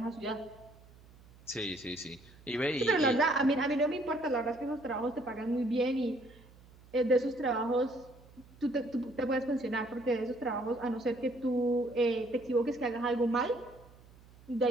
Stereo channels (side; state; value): right; noise; hum, 24 dB below the sound